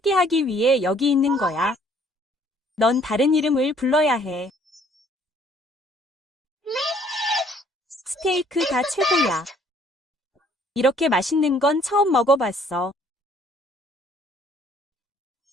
위해 여기 있는 거야. 넌 다른 이름을 불러야 해. 스테이크가 최고야. 이렇게 맛있는 건 처음 먹어봤어.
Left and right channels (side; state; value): both; normal; correlation 0.60